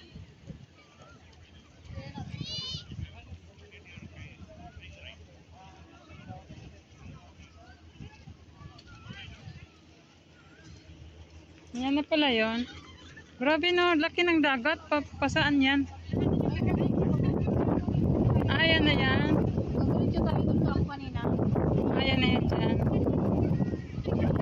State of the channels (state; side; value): identical; both; correlation 1.00